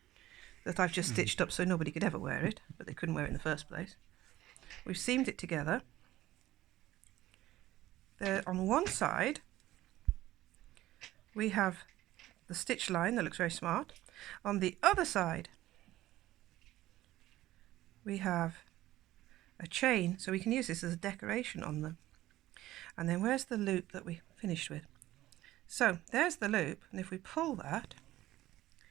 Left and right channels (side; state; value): left; quieter; 15.4 dB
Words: that I've just stitched up so nobody could ever wear it, but they couldn't wear it in the first place. We've seamed it together. There on one side we have the stitch line that looks very smart. On the other side we have a chain, so we can use this as a decoration on them. And then where's the loop that we finished with? So there's the loop, and if we pull that,